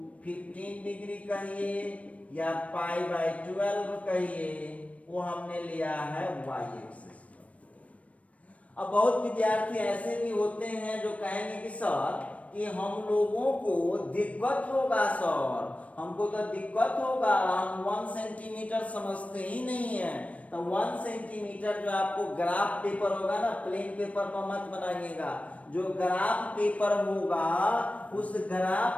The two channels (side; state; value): right; late; 0.065 ms